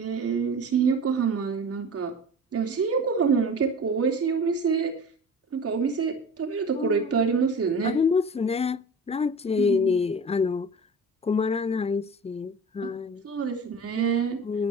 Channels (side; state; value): both; normal; correlation 0.37